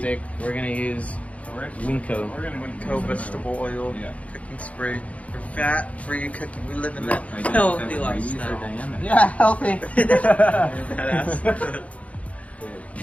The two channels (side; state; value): right; late; 0.066 ms